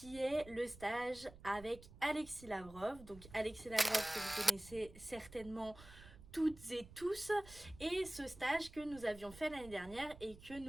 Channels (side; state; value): right; noise; rumble, 18 dB below the sound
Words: est le stage avec Alexis Lavrov. Donc Alexis Lavrov que vous connaissez certainement toutes et tous, et ce stage que nous avions fait l'année dernière et que